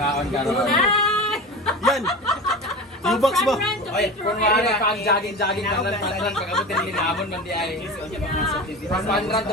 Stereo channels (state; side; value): normal; both; correlation 0.30